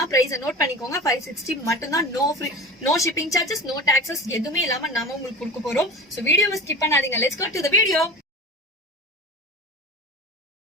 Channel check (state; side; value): normal; both; correlation 0.33